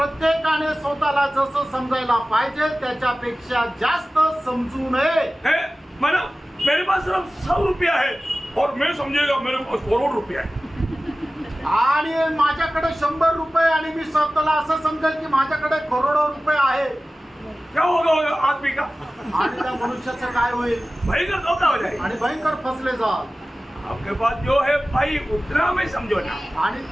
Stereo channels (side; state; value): both; normal; correlation 0.96